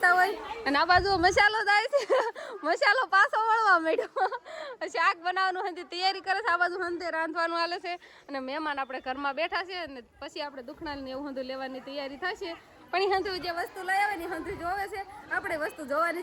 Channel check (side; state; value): both; identical; correlation 1.00